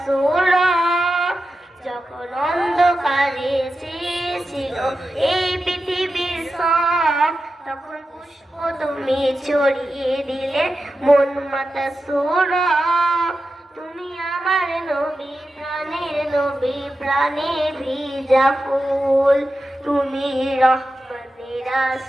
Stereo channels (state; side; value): normal; both; correlation 0.91